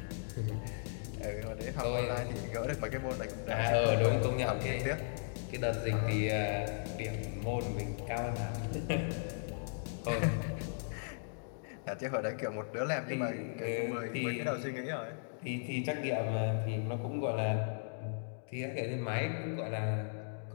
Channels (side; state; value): right; silent; digital silence